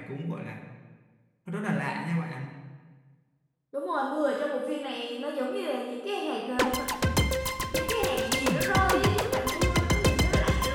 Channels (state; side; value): identical; both; correlation 1.00